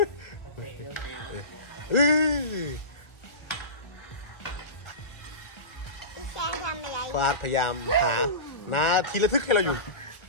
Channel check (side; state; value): right; late; 1.4 ms